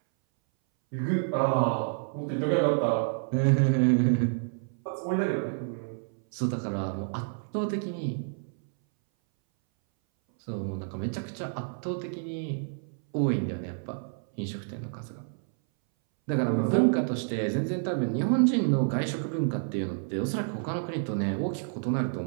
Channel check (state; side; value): silent; left; 59 dB below the other